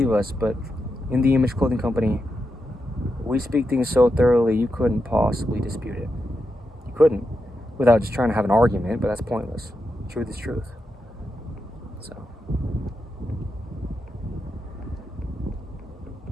us, but In the Image Clothing Company, we speak things so thoroughly you couldn't possibly dispute it. You couldn't, without just trying to have an argument, but that's pointless. Truth is truth. So,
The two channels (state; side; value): normal; both; correlation 0.86